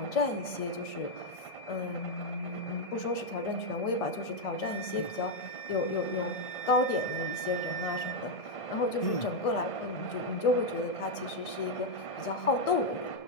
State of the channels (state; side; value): late; right; 1.6 ms